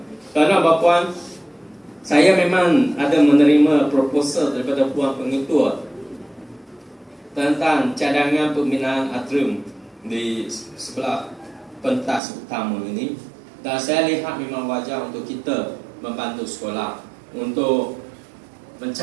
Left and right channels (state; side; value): drops out; left; at 12.2 s